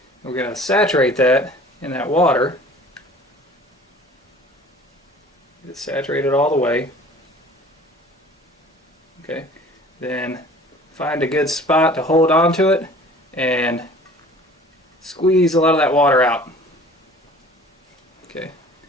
And we're going to saturate that in that water. Get it saturated all the way. Okay, then find a good spot to hold on to it and squeeze a lot of that water out. Okay,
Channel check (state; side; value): normal; both; correlation 0.47